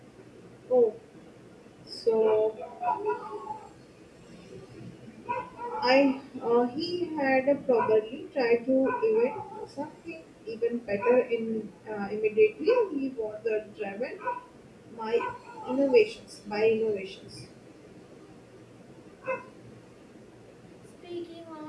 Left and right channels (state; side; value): identical; both; correlation 1.00